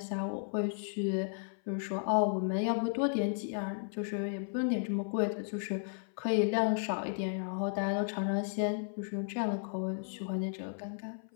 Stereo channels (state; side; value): silent; right; 55 dB below the other